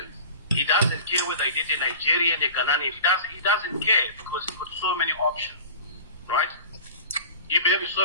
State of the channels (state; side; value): inverted; both; correlation -0.37